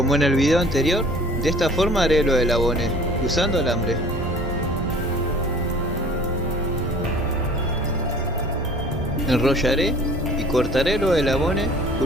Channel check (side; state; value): both; normal; correlation 0.49